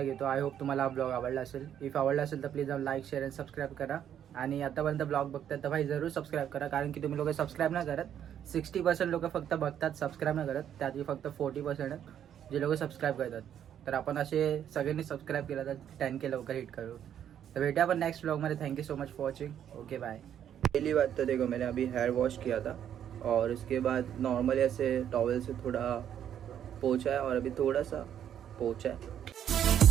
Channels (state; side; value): quieter; left; 9.7 dB